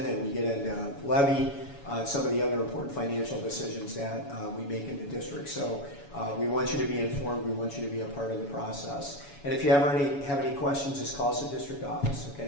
and we get into levy, some of the other important financial decisions that we make in the district. So we want you to be informed. We want you to be a part of the process. And if you ever have any questions, just call us at district office. Okay,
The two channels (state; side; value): late; right; 7.1 ms